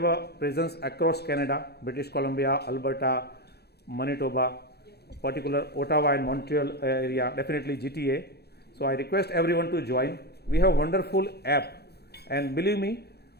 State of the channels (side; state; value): right; late; 0.47 ms